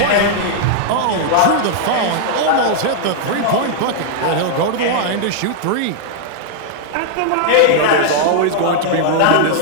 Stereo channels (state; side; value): different; both; correlation -0.01